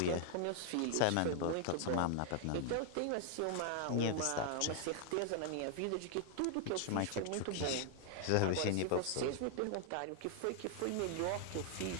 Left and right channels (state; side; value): different; both; correlation 0.00